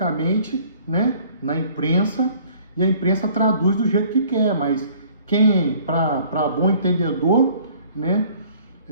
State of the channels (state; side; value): inverted; both; correlation -0.55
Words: né, na imprensa, e a imprensa traduz do jeito que quer, mas quem, para bom entendedor, né,